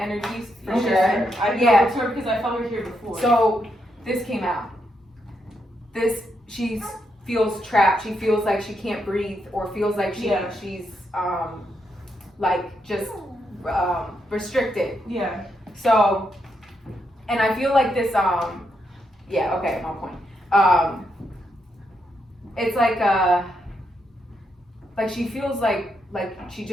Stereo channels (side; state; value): both; normal; correlation 0.81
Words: for Okay. sure. I know Yeah. it's her because I felt her here before. So this came out. She feels trapped. She feels like she can't breathe, or feels like she's like just restricted. yeah. So, and I feel like this yeah, okay, I'm on point. It's like she feels like she